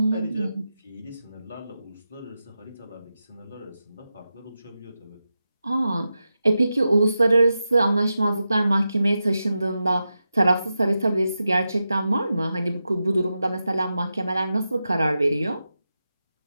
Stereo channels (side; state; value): both; inverted; correlation -0.90